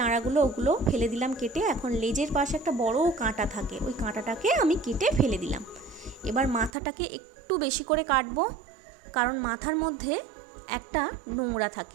ওগুলো ফেলে দিলাম কেটে। এখন লেজের পাশে একটা বড় কাঁটা থাকে, ওই কাঁটাটাকে আমি কেটে ফেলে দিলাম। এবার মাথাটাকে একটু বেশি করে কাটবো, কারণ মাথার মধ্যে একটা নোংরা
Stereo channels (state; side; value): drops out; left; at 6.7 s